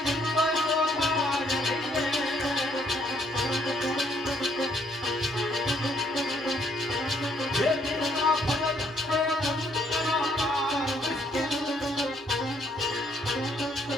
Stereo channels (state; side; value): normal; both; correlation 0.68